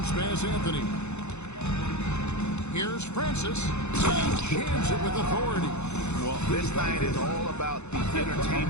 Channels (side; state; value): right; late; 0.82 ms